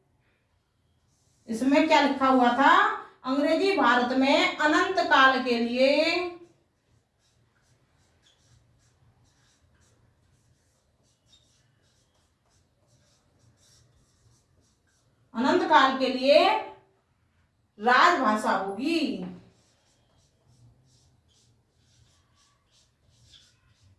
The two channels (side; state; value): both; identical; correlation 1.00